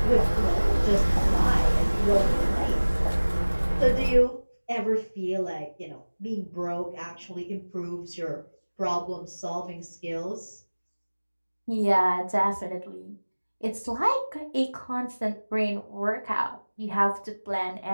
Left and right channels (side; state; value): both; inverted; correlation -1.00